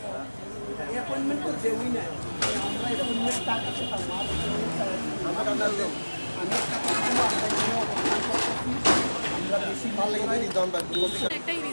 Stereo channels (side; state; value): both; inverted; correlation -1.00